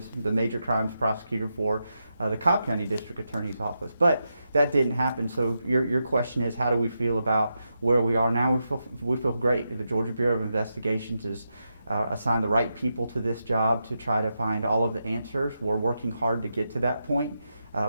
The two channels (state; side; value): inverted; both; correlation -0.86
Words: the major crimes prosecutor for the Cobb County District Attorney's office. But that didn't happen. So your question is, how do we feel about where we are now? We feel great. The Georgia Bureau of Investigations has assigned the right people to this job to try to find all of the answers. We're working hard to get to that point.